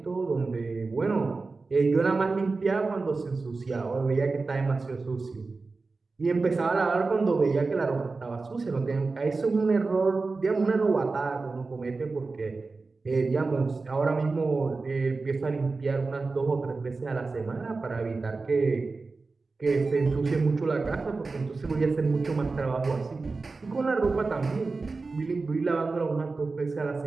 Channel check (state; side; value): quieter; left; 3.9 dB